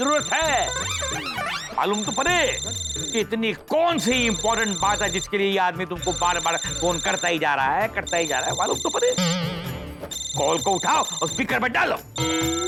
है। मालूम तो पड़े कि इतनी कौन सी इंपॉर्टेंट बात है जिसके लिए ये आदमी तुमको बार बार फोन करता ही जा रहा है, करता ही जा रहा है। मालूम तो पड़े। कॉल को उठाओ और स्पीकर पे डालो,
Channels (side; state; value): both; identical; correlation 1.00